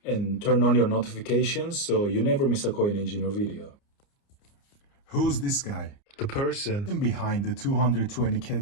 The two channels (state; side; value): late; right; 29 ms